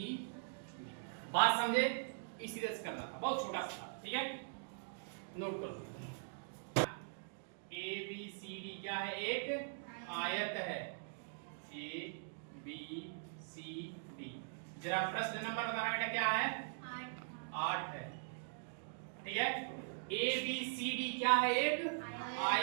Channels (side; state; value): left; silent; digital silence